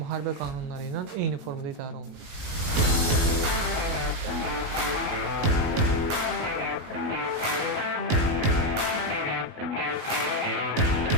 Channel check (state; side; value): late; left; 18 ms